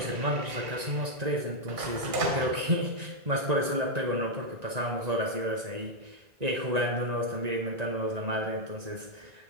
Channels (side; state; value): left; late; 1.9 ms